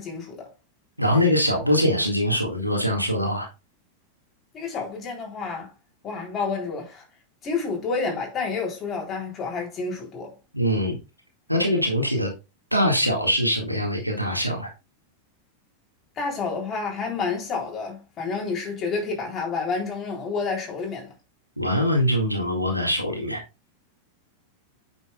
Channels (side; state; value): both; inverted; correlation -0.39